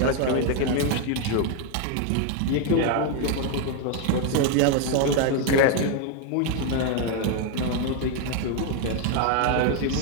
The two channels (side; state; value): both; different; correlation 0.01